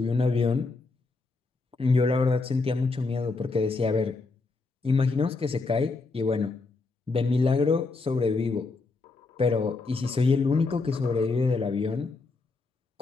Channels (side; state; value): right; quieter; 3.8 dB